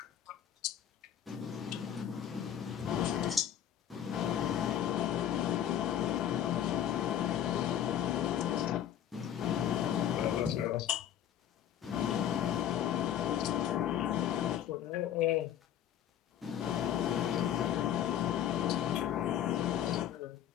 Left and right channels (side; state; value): right; quieter; 10.3 dB